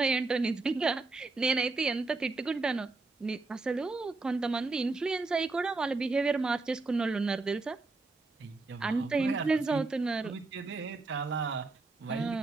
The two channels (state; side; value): quieter; left; 3.6 dB